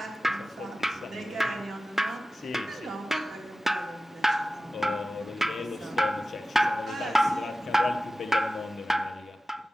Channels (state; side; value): normal; both; correlation 0.96